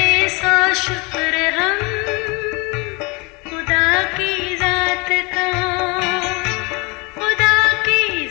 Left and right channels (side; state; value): right; quieter; 28.2 dB